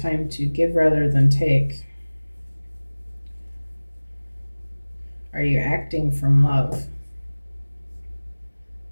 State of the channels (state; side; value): inverted; both; correlation -1.00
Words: to give rather than take. Are you acting from love?